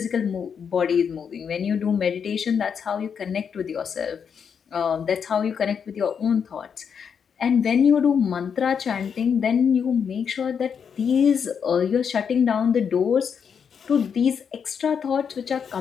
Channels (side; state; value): right; quieter; 7.0 dB